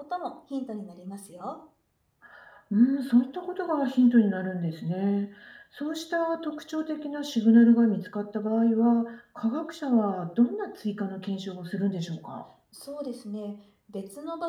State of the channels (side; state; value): both; identical; correlation 1.00